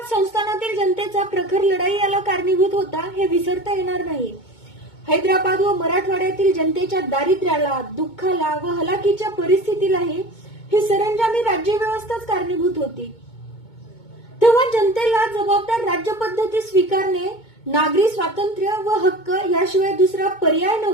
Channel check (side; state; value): right; late; 2.2 ms